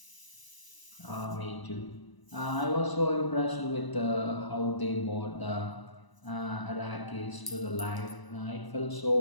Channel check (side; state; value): right; late; 1.0 ms